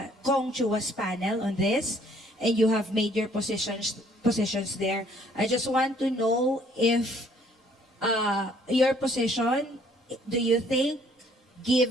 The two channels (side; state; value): both; normal; correlation 0.62